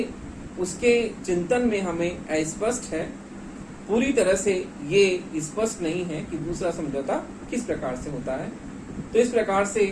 उसके चिंतन में हमें अस्पष्ट है। पूरी तरह से ये स्पष्ट नहीं है कि दूसरा समझौता किस प्रकार से होता है। तो इस प्रकार से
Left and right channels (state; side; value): identical; both; correlation 1.00